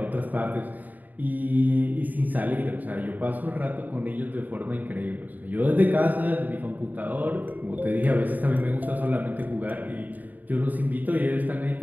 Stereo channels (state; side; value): late; left; 0.082 ms